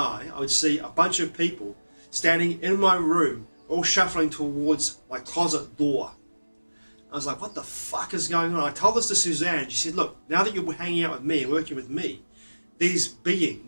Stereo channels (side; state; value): both; inverted; correlation -1.00